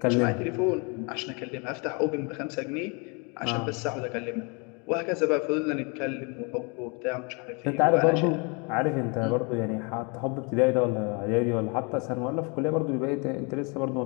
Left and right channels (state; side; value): quieter; right; 32.2 dB